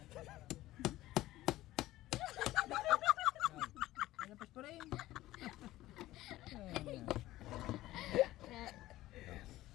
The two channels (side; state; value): right; quieter; 16.1 dB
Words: Lapas pa rin.